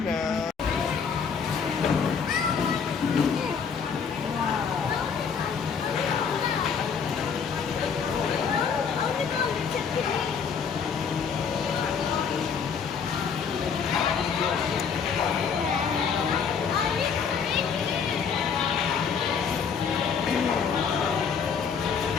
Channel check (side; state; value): right; quieter; 6.4 dB